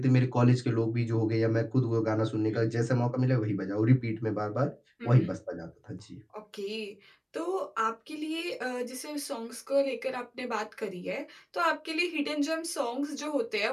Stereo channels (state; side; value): identical; both; correlation 1.00